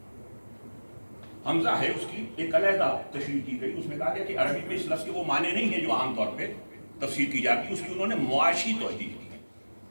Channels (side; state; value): both; inverted; correlation -1.00